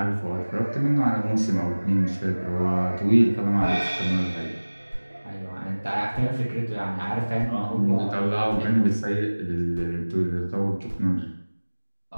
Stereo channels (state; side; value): inverted; both; correlation -1.00